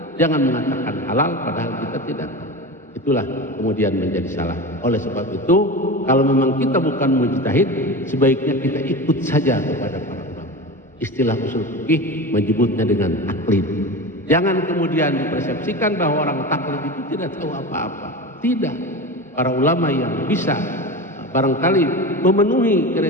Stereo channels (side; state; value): both; normal; correlation 0.27